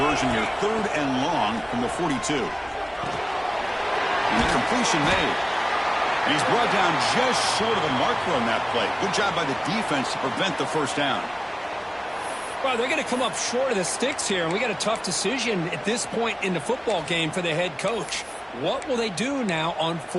here. 3rd and long from the 42. And the completion made. And he's brought down just short of the marker on that play. Good job by the defense to prevent the first down. Well, they're going to come up short of the sticks here, and we got a tough decision at this point in the football game for the head coach. What will they do now on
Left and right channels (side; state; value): both; identical; correlation 1.00